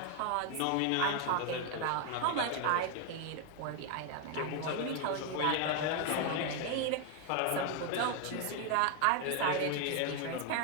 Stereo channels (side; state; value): both; different; correlation 0.01